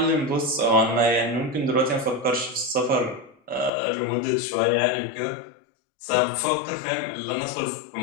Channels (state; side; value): drops out; right; at 3.7 s